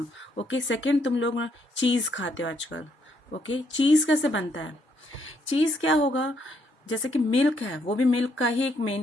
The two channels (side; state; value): both; normal; correlation 0.73